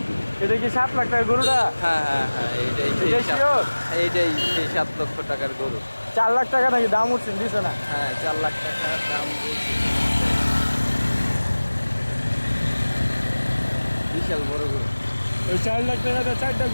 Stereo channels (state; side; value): inverted; both; correlation -1.00